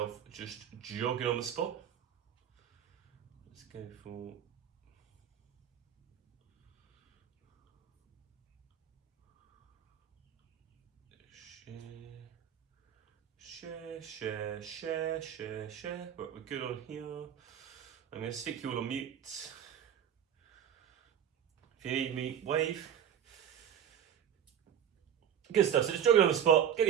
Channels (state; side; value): quieter; left; 9.2 dB